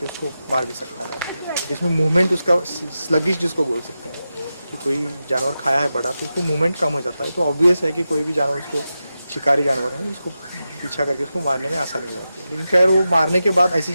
उसको मार भी सकता है। जिसमें मूवमेंट उसका स्लगिश जिसको बोल सकते हैं कि कोई जानवर खाया है बड़ा तो उसको मूवमेंट कम हो जाता है, तो ऑब्वियस है कि कोई भी जानवर उसको शिकारी जानवर है उसको पीछा करके उसको मारने में आसानी हो जाती है। लेकिन खैर वो मारने के बाद ऐसी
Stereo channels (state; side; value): inverted; both; correlation -0.91